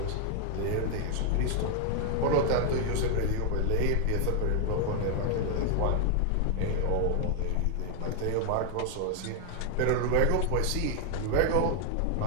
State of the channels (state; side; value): different; both; correlation 0.00